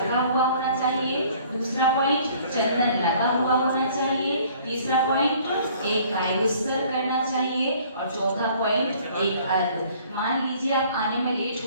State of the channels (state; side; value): inverted; both; correlation -0.55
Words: हुआ होना चाहिए। दूसरा पॉइंट, चंदन लगा हुआ होना चाहिए। तीसरा पॉइंट, एक कायोत्सर्ग करना चाहिए। और चौथा पॉइंट, एक अर्घ्य। मान लीजिए आप आने में लेट